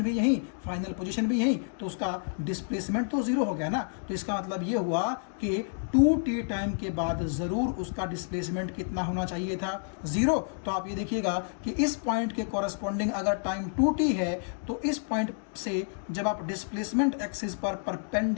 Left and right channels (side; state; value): right; silent; digital silence